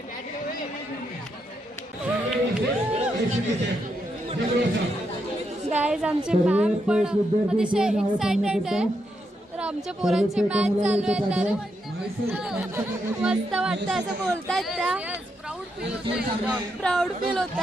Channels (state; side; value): normal; both; correlation 0.81